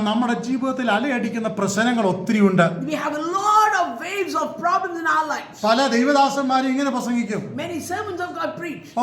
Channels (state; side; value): identical; both; correlation 1.00